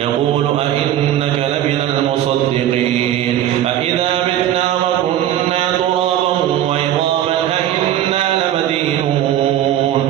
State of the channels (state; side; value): quieter; left; 11.7 dB